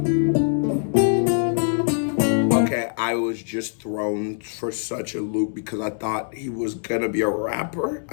Okay, I was just thrown for such a loop because I thought he was gonna be a rapper.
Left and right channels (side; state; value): right; silent; 63 dB below the other